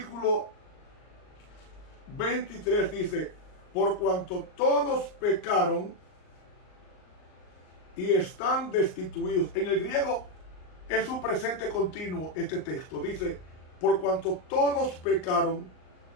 23 dice: por cuanto todos pecaron y están destituidos. En el griego es un presente continuo este texto. Dice: por cuanto todos pecaron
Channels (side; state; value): right; late; 39 ms